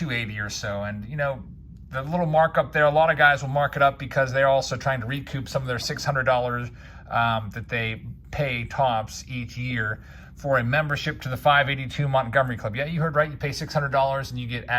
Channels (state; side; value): identical; both; correlation 1.00